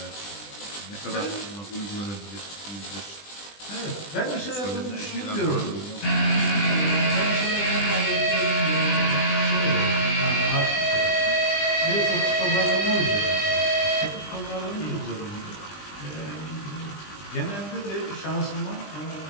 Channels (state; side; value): late; right; 20 ms